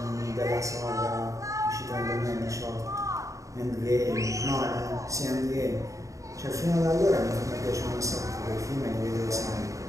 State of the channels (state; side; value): late; left; 0.16 ms